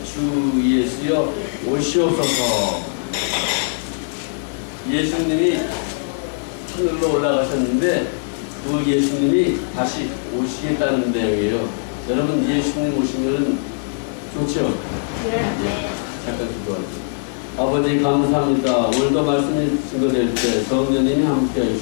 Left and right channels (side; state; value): right; silent; digital silence